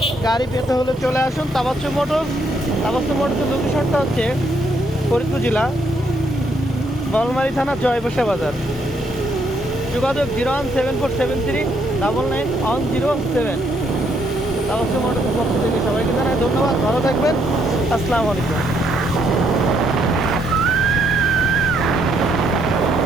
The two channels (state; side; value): normal; both; correlation 0.72